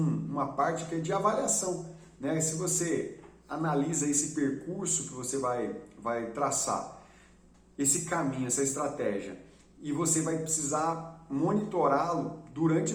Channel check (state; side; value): identical; both; correlation 1.00